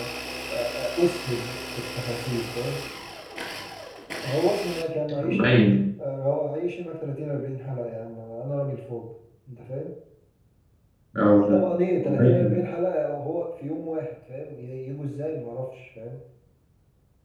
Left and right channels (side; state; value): both; identical; correlation 1.00